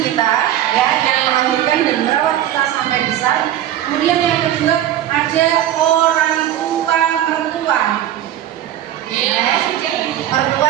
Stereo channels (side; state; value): left; quieter; 12.0 dB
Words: ya, yang melahirkan dan merawat kita sampai besar. Kemudian yang kedua ada orang tua mertua. Mertua